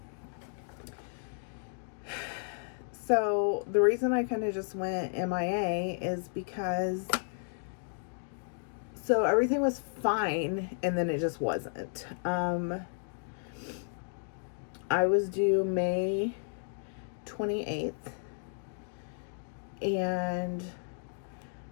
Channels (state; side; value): silent; right; digital silence